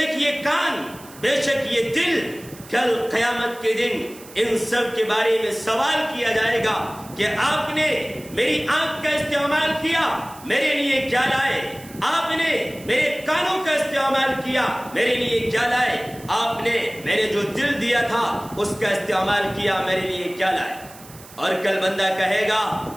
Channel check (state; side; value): noise; right; hiss, 20 dB below the sound